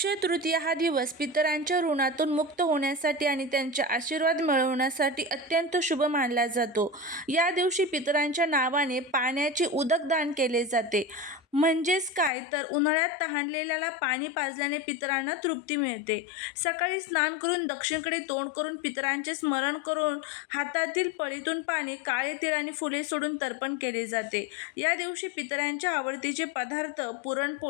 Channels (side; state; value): right; drops out; at 12.3 s